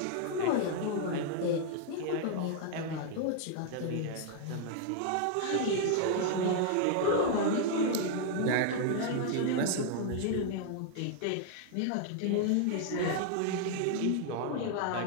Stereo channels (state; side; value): different; both; correlation 0.00